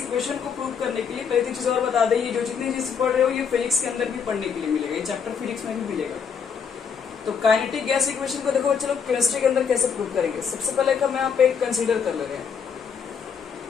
को प्रूव करने के लिए पहले चीज और बता दें, ये जो जितनी चीज पढ़ रहे हो ये फिजिक्स के अंदर भी पढ़ने के लिए मिलेगा, ये चैप्टर फिजिक्स में भी मिलेगा। तो काइनेटिक गैस इक्वेशन को देखो चलो केमिस्ट्री के अंदर कैसे प्रूव करेंगे। सबसे पहले हम यहाँ पे कंसीडर कर ले रहे हैं,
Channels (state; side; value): quieter; right; 6.7 dB